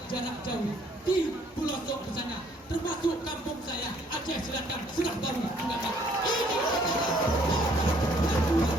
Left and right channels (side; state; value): both; normal; correlation 0.63